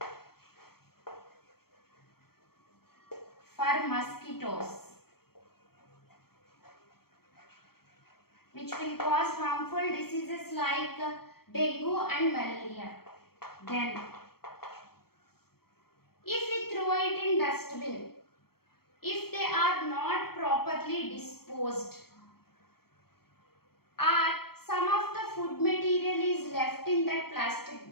For mosquitoes, which will cause harmful diseases like dengue and malaria. Then, if we throw it in dustbin, if they are not properly disposed, or some of the food material is left in that plastic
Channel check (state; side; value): late; right; 0.95 ms